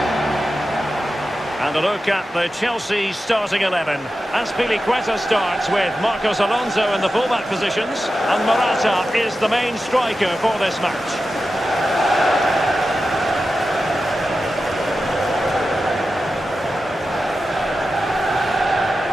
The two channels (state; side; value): normal; both; correlation 0.92